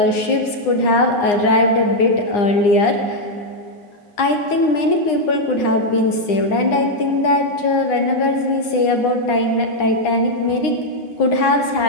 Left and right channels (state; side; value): late; right; 9.8 ms